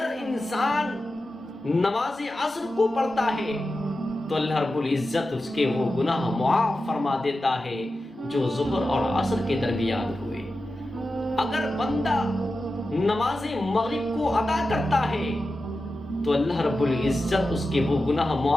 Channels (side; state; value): both; normal; correlation 0.92